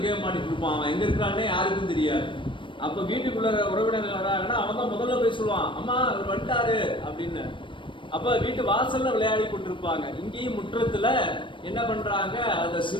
கேம் ஆடிட்டு இருப்பான். அவன் எங்க இருக்கிறானே யாருக்கும் தெரியாது. அப்ப வீட்டுக்குள்ள உறவினர்கள் வராங்கன்னா அவன் தான் முதல்ல போய் சொல்லுவான், அம்மா அவர் வந்துட்டாரு அப்படின்னு. அப்ப வீட்டு வாசல்ல விளையாடி கொண்டிருப்பாங்க. இங்கேயும் முற்றத்துல என்ன பண்றாங்க, அந்த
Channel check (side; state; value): right; late; 0.24 ms